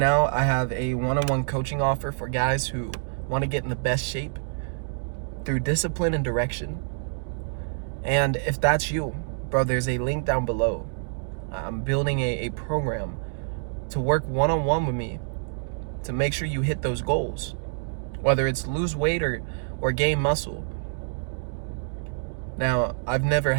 I have a one-on-one coaching offer for guys who want to get in the best shape through discipline and direction. And if that's you, bro, there's a link down below. I'm building a program to work one-on-one with me to make sure you hit those goals, whether it's lose weight or gain muscle. Now, I've never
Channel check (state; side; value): silent; left; digital silence